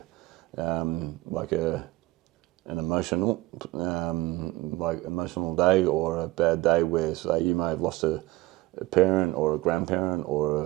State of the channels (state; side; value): quieter; left; 19.7 dB